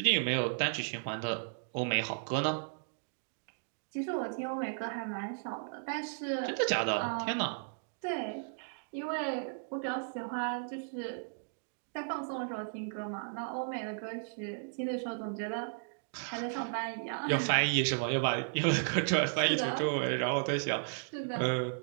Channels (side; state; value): left; silent; digital silence